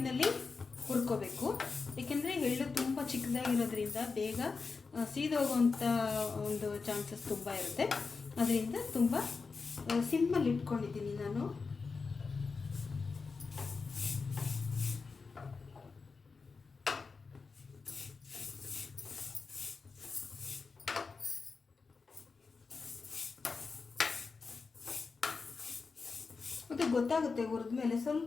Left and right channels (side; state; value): right; quieter; 4.6 dB